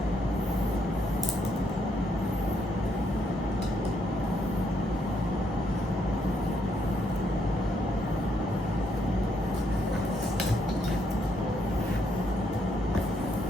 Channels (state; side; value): normal; both; correlation 0.74